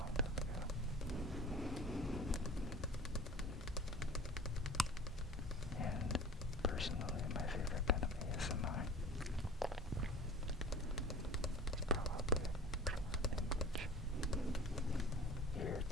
time ago. And personally, my favorite kind of ASMR is probably language,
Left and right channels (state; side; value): normal; both; correlation 0.37